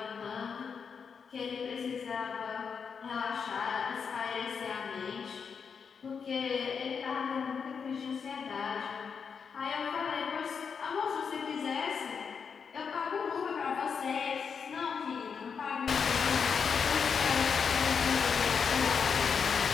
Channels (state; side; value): quieter; right; 6.2 dB